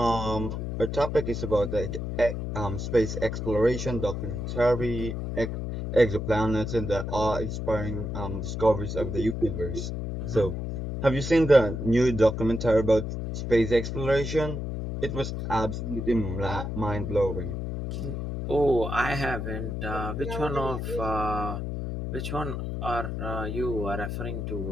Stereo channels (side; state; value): left; noise; hum, 4 dB below the sound